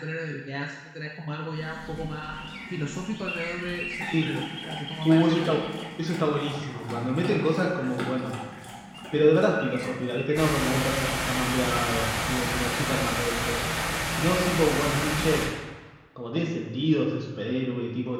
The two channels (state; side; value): identical; both; correlation 1.00